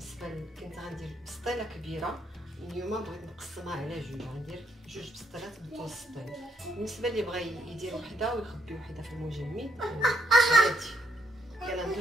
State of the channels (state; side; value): normal; both; correlation 0.74